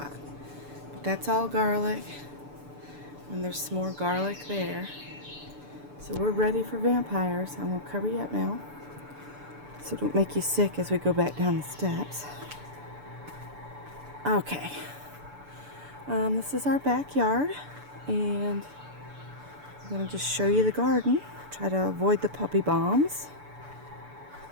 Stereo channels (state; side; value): late; left; 6.9 ms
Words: But that's all garlic. And there's some more garlic there. So we're ready for vampires. I'm going to cover you up now, so don't make you sick as we go back down the steps. Okay. This is our backyard. And I'm going to just show you the garden. Try to avoid the puppy bombs.